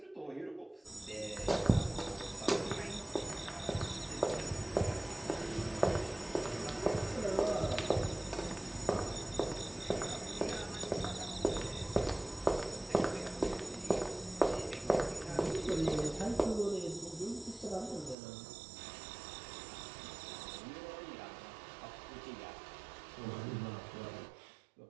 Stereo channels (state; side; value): drops out; left; at 18.2 s